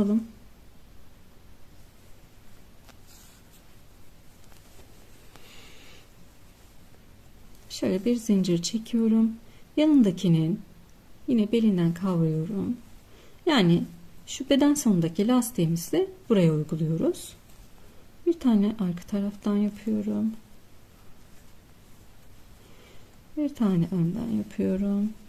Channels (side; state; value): both; identical; correlation 1.00